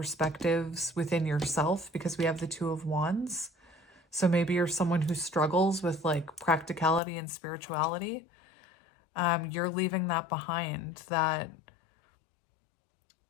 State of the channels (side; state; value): right; drops out; at 7.0 s